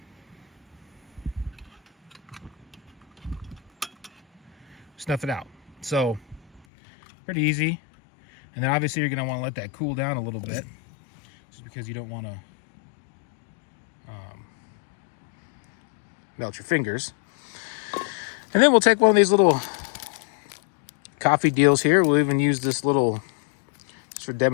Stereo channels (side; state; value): right; drops out; at 6.6 s